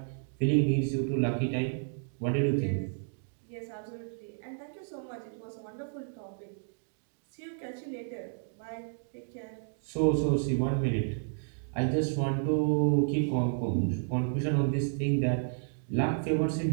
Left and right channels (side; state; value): left; silent; digital silence